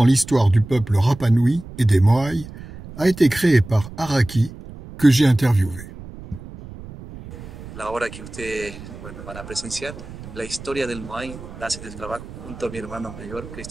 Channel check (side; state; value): right; noise; rumble, 14 dB below the sound